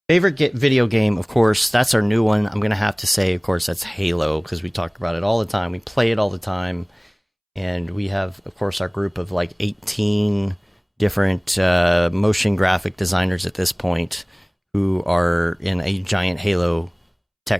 favorite video game, of course, that's our new one. I'm going to have to say, of course, that's Halo, because we talk about it all the time. We play it all the time. And we have, of course, our group of like 18 different motion graphic designers at this point who are in a giant Halo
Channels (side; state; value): both; identical; correlation 1.00